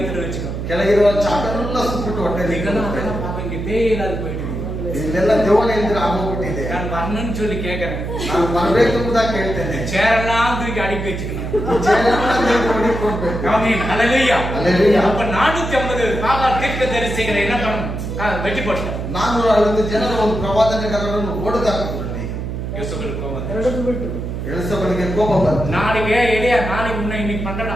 வச்சுக்கோ. ಕೆಳಗಿರುವ ಚಾಕನೆಲ್ಲ ಸುಟ್ಬಿಟ್ಟು ಹೊಟ್ಟೆಲಿ இங்க பேயே இல்லாத போயிட்டு ಇಲ್ಲೆಲ್ಲ ದೇವನೇ ಇದ್ರೆ ಆಗೋಗ್ಬಿಟ್ಟಿದೆ. நான் வரணும்னு சொல்லி கேட்கறேன். ನಾನು ಬರಬೇಕು ಅಂತ ಕೇಳ್ತೇನೆ. சேரெல்லாம் தூக்கி அடுக்கி வச்சுக்கணும். ஆமென். ஹல்லேலூயா. ஹல்லேலூயா. அப்ப 450 பாகால் தீர்க்கதரிசிகளை என்ன பண்ணணும்? வெட்டி போட்டார். 450 ಜನರ ಒಂದು ಪ್ರವಾದನೆಗಾರರನ್ನು ಹೊಡೆದಾಕಿದ್ರು. யோசேப்புக்கு கோபம் வந்துச்சு. ಎಳೆದು ಬಿಟ್ಟು ಎಲಿಸಬೆತ್ಗೆ ಕೋಪ ಬಂತು. நாளைக்கு எலியா நாளைக்கு முன்ன இன்னைக்கு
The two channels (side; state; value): right; noise; hum, 5 dB below the sound